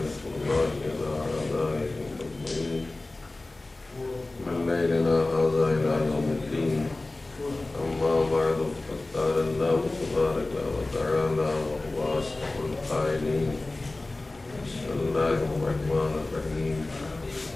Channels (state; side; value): quieter; right; 3.0 dB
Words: الله على أعدائهم أجمعين من ليلنا هذا إلى يوم الدين أما بعد فقد قال الله تبارك وتعالى وهو أصدق القائلين بسم الله الرحمن الرحيم